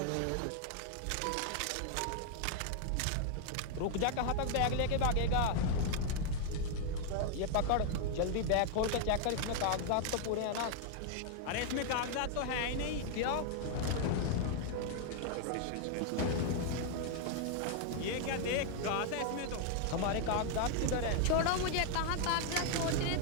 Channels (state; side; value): different; both; correlation 0.00